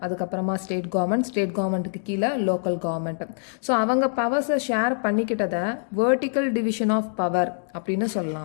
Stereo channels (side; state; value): right; silent; digital silence